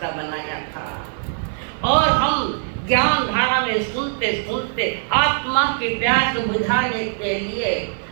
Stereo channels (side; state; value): left; silent; digital silence